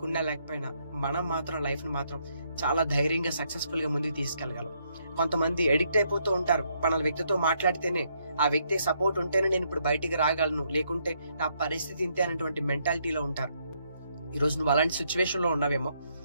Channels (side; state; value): both; inverted; correlation -0.74